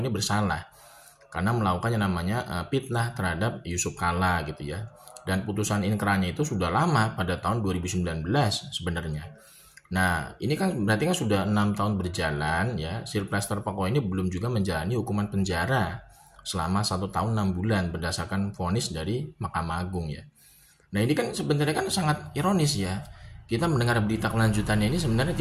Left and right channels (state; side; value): identical; both; correlation 1.00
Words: bersalah karena melakukan yang namanya fitnah terhadap Yusuf Kala gitu ya. Dan putusan inkrahnya itu sudah lama pada tahun 2019 sebenarnya. Nah, ini kan berarti kan sudah 6 tahun berjalan ya. Sylvester Pokok ini belum juga menjalani hukuman penjara selama 1 tahun 6 bulan berdasarkan vonis dari Mahkamah Agung ya. Nah, ini kan sebenarnya kan sangat ironis ya. Kita mendengar berita kelanjutannya ini sebenarnya